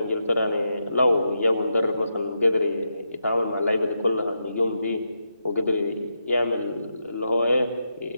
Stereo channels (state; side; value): inverted; both; correlation -0.85